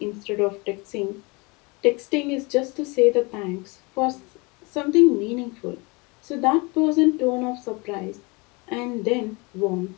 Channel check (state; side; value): quieter; right; 27.8 dB